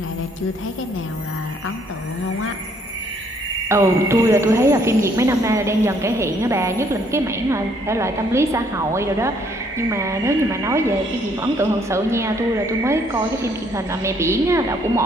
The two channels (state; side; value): normal; both; correlation 0.66